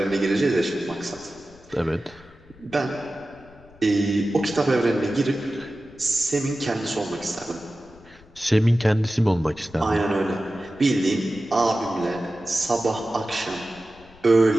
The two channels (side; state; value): left; noise; rumble, 25 dB below the sound